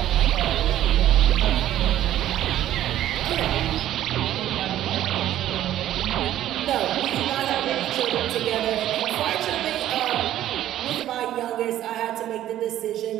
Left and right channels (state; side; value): quieter; left; 12.7 dB